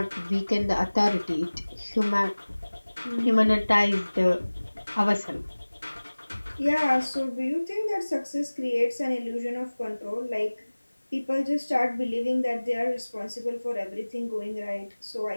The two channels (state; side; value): inverted; both; correlation -1.00